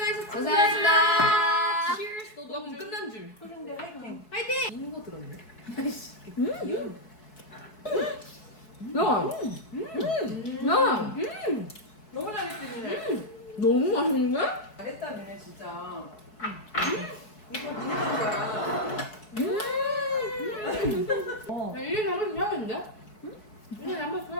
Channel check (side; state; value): right; late; 4.7 ms